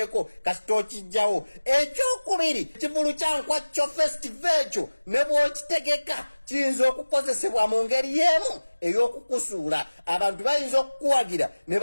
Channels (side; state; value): both; inverted; correlation -1.00